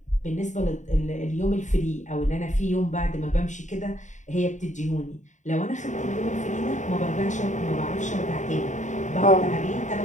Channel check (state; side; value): late; right; 0.35 ms